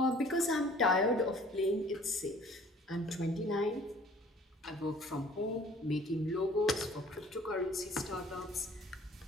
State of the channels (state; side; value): normal; both; correlation 0.52